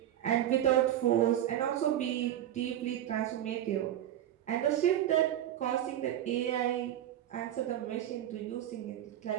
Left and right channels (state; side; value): quieter; left; 11.9 dB